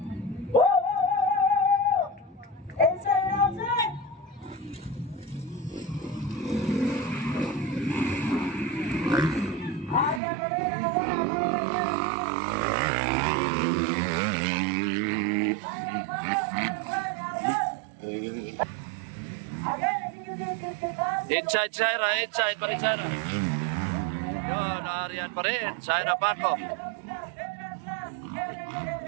Inside, outside! Inside Syra, pa rin Syra. Yun, Aryan pa rin. Syra Paco.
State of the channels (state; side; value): drops out; left; at 10.2 s